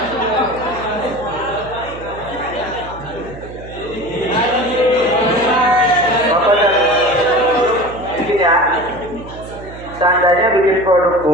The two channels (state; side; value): noise; right; hum, 15 dB below the sound